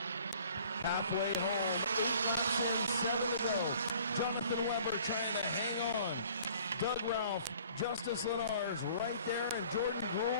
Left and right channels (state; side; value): inverted; both; correlation -0.53